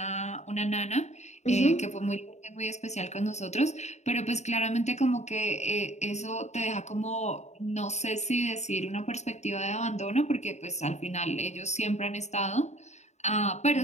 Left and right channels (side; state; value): right; late; 0.33 ms